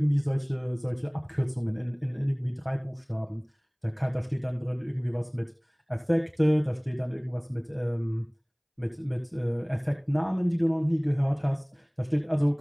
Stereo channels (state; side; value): identical; both; correlation 1.00